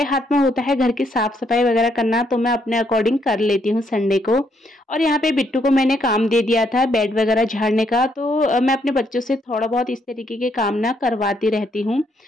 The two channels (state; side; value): normal; both; correlation 0.73